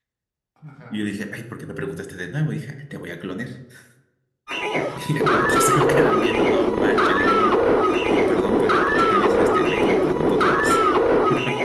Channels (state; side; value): identical; both; correlation 1.00